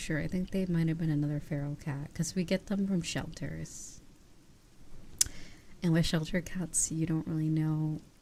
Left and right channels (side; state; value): both; identical; correlation 1.00